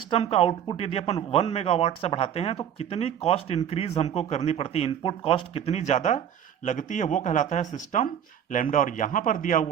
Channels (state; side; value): quieter; left; 9.3 dB